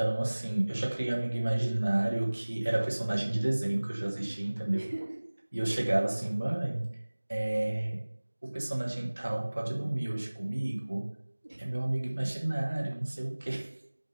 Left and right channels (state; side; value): inverted; both; correlation -1.00